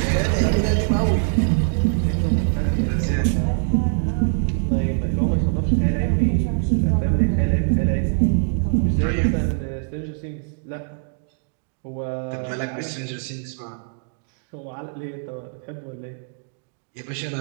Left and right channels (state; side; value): silent; left; digital silence